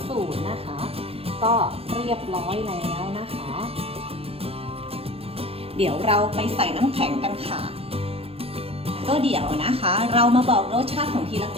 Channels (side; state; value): left; late; 0.28 ms